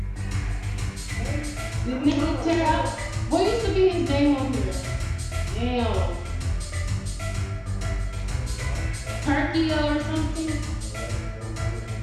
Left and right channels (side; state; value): both; identical; correlation 1.00